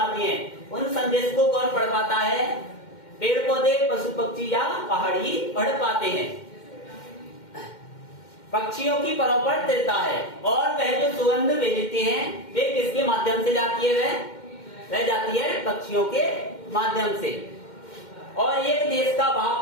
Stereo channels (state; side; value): late; right; 2.1 ms